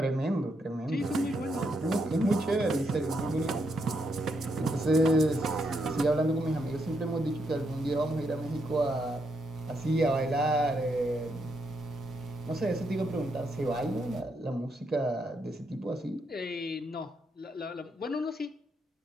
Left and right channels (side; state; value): both; normal; correlation 0.78